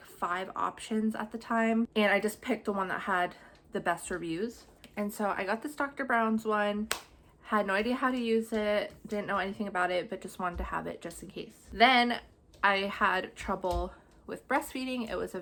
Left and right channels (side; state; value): both; identical; correlation 1.00